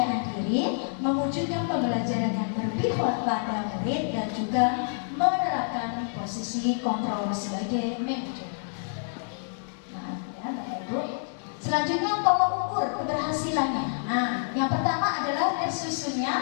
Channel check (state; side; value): silent; right; digital silence